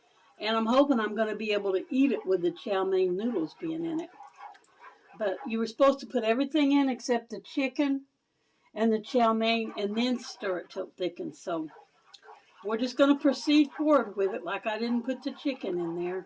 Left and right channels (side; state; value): both; identical; correlation 1.00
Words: And I'm hoping I'm going to be able to eat it with the chow mein noodles being in it. But you were supposed to put everything in except the chicken and the chow mein and then stir it till it thickens. So we're just going to proceed forward with it like I didn't put the chicken in there.